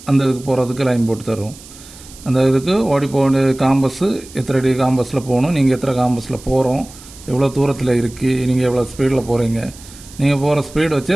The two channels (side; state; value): right; noise; hiss, 19 dB below the sound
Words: அந்த இதுக்கு போகிறதுக்கு லைன் போட்டு தரும். அந்த இதுக்கு ஓடி போக காம்பஸ்ஸு எத்தனை அடி காம்பஸில் போகணும், நீங்கள் எத்தனை காம்பஸில் போகிறோம், எவ்வளோ தூரத்தில் இருக்குது, நீங்கள் எவ்வளோ ஸ்பீடில் போகிறீங்க, நீங்கள் போகிற ஸ்பீடு வச்சு